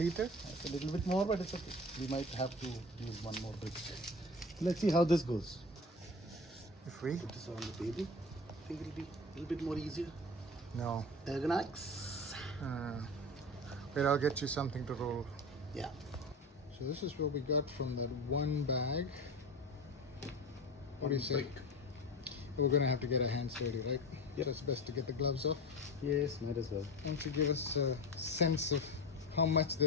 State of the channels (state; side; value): normal; both; correlation 0.29